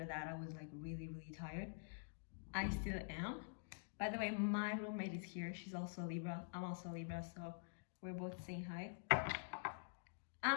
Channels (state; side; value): silent; right; digital silence